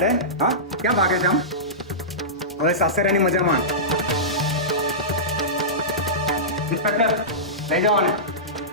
હા, ક્યાં ભાગે છે આમ? હવે સાસરિયાની મજા માણ. ઇન્સ્પેક્ટર, લઈ જાઓ ને.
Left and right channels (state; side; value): normal; both; correlation -0.17